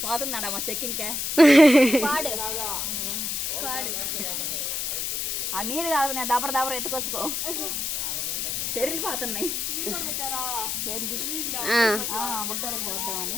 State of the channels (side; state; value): left; noise; hiss, 1 dB below the sound